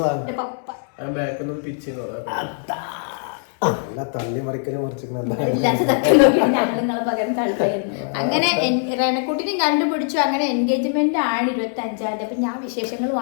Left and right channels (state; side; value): silent; right; 59 dB below the other